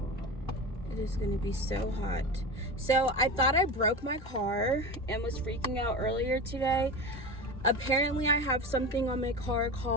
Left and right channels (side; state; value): both; normal; correlation 0.26